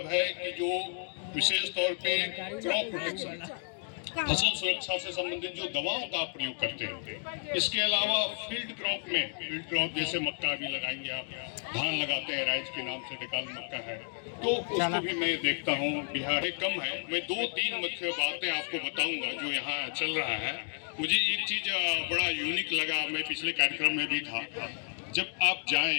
है कि जो विशेष तौर पे क्रॉप प्रोटेक्शन, फसल सुरक्षा से संबंधित जो दवाओं का प्रयोग करते हैं, इसके अलावा फील्ड क्रॉप जैसे मक्का भी लगाएंगे आप, धान लगाते हैं, राइस के नाम से डिकाल मक्का है, तो उसको भी मैं देखता हूँ। बिहार में कम है। मैं 2-3 मुख्य बातें आपको बताऊंगा जो यहाँ चल रहा है। मुझे एक चीज बड़ा यूनिक लगा, मैं पिछले कार्यक्रम में भी था। जब आप जाएं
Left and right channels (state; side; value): silent; right; 57 dB below the other